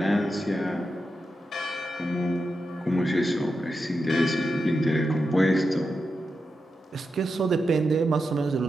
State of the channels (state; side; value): normal; both; correlation 0.88